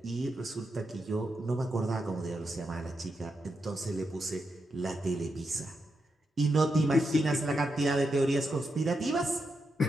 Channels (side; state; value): both; normal; correlation 0.85